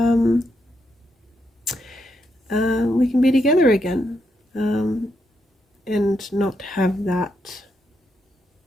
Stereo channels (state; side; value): normal; both; correlation 0.81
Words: we can be together again, and not have that